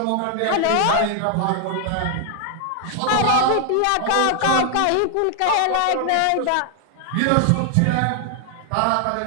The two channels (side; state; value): both; different; correlation 0.00